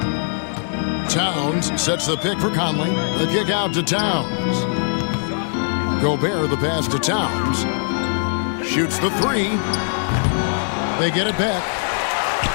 Towns sets the pick for Conley. The kick out to Towns. Gobert the pass to Towns. Shoots the three. They get it back.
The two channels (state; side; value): silent; right; 65 dB below the other